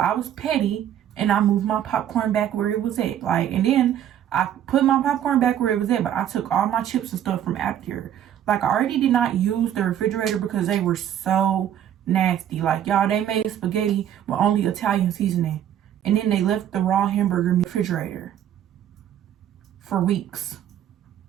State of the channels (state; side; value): quieter; left; 10.5 dB